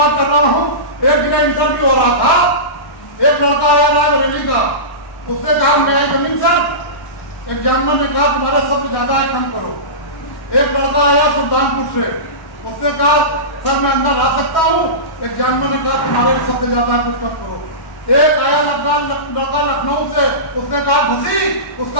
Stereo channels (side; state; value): right; late; 1.1 ms